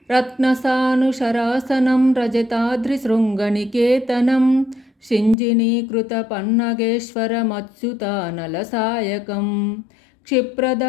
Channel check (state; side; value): drops out; right; at 5.4 s